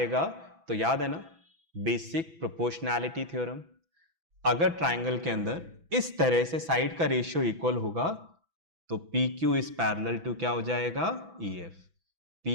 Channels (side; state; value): left; late; 6.0 ms